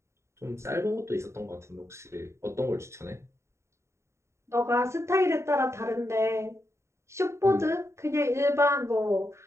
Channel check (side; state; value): left; late; 0.14 ms